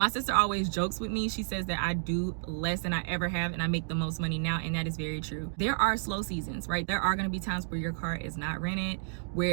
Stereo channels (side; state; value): left; silent; digital silence